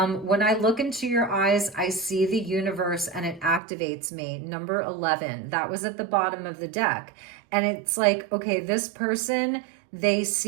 I look into your eyes, I see the universe and it activates me. Number 11, that was at the bottom of the deck. And it's like, okay, this person, they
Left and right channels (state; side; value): drops out; left; at 3.6 s